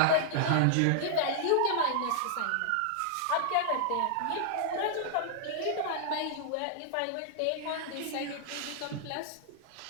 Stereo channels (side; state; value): both; different; correlation -0.01